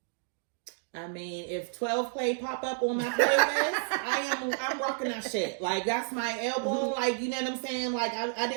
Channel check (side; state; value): left; silent; digital silence